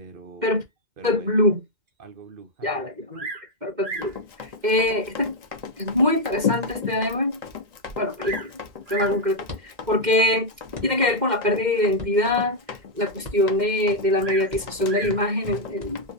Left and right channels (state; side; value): late; left; 2.1 ms